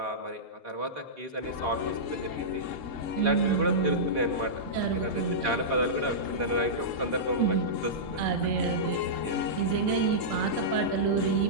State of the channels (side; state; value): left; late; 3.7 ms